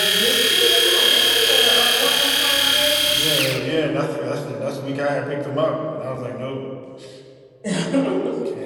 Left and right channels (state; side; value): identical; both; correlation 1.00